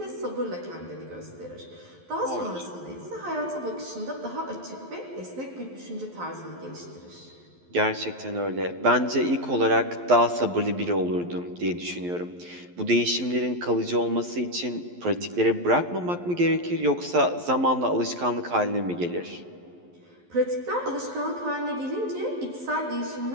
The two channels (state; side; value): late; left; 11 ms